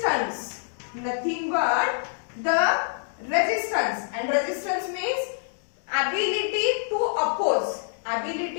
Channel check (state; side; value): silent; right; digital silence